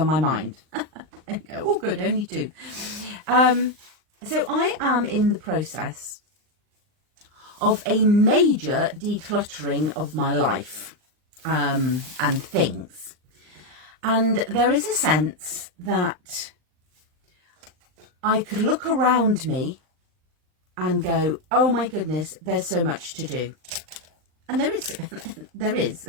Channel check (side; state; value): left; late; 39 ms